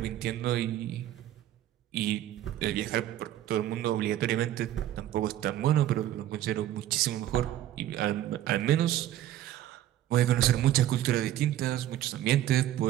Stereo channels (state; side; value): quieter; left; 12.8 dB